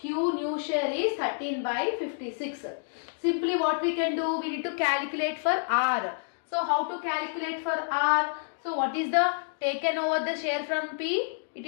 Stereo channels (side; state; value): right; silent; digital silence